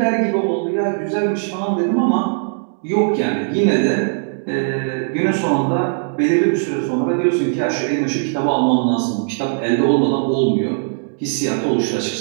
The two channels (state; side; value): silent; left; 67 dB below the other